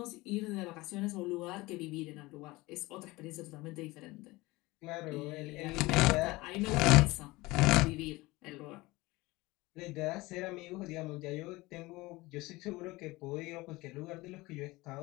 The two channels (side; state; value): right; quieter; 21.2 dB